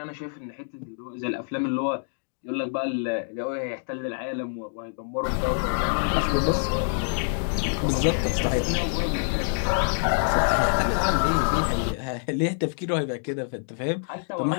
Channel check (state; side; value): silent; right; digital silence